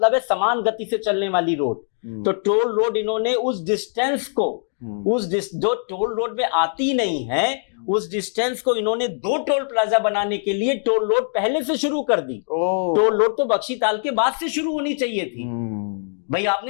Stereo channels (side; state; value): right; silent; 62 dB below the other